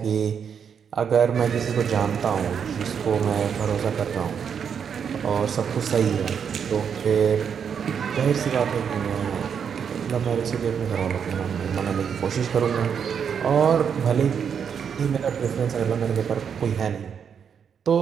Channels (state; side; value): quieter; left; 7.3 dB